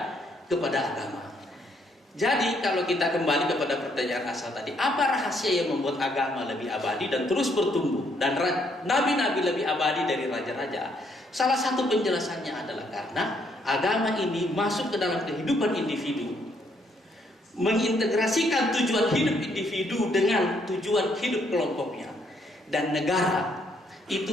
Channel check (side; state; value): both; normal; correlation 0.71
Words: agama. Jadi kalau kita kembali kepada pertanyaan asal tadi, apa rahasia yang membuat agama lebih abadi dan terus bertumbuh, dan nabi-nabi lebih abadi dari raja-raja? Salah satu penjelasannya adalah karena agama ini masuk ke dalam kehidupan individu, mengintegrasikan tujuan hidup individu dengan tujuan hidup kelompoknya. Dan negara